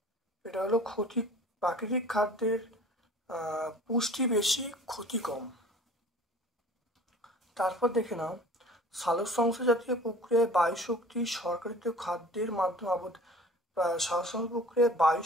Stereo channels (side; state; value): both; normal; correlation 0.46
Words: এটা হলো প্রাকৃতিক খাদ্যের পুষ্টি বেশি, ক্ষতি কম। তারপর দেখে নাও সালোকসংশ্লেষ জাতীয় প্রক্রিয়ায় বায়ু শক্তি সরকারিত খাদ্যের মাধ্যমে সালোকসংশ্লেষ প্রক্রিয়ায় বায়ু